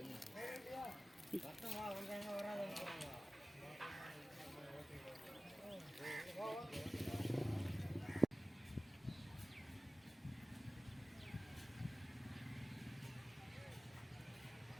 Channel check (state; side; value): normal; both; correlation 0.97